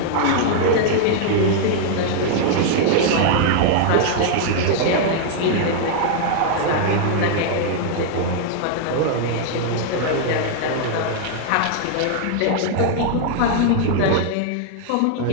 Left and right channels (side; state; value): both; different; correlation -0.01